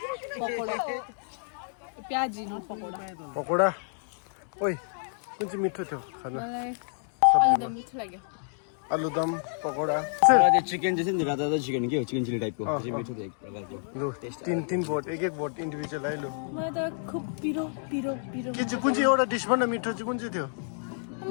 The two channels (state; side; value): silent; right; digital silence